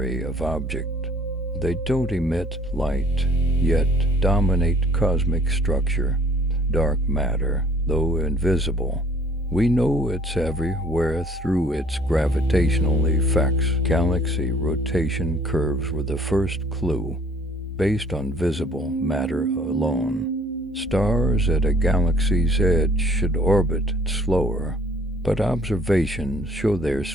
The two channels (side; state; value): both; normal; correlation 0.57